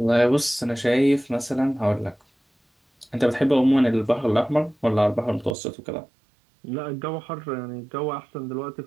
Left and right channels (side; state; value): left; drops out; at 5.6 s